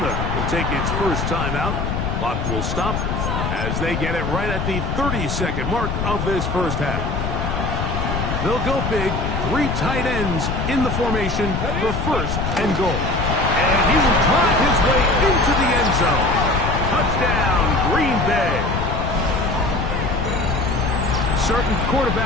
will take its first timeout. Clock will stop as they get it right at the 30-second mark of this first half. They'll go big, 3 tight ends in the formation for 1st and goal. And he will drive his way into the end zone. Touchdown, Green Bay. Certain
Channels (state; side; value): noise; left; rumble, 2 dB below the sound